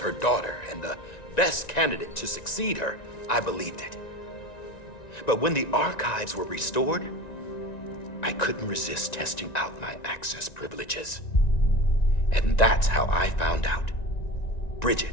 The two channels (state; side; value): late; right; 1.9 ms